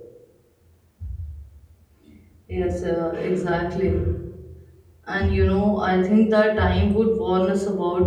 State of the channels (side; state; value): both; identical; correlation 1.00